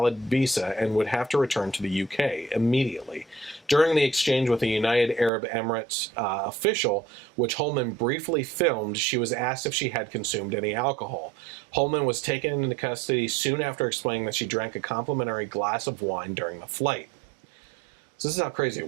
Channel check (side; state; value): left; drops out; at 5.3 s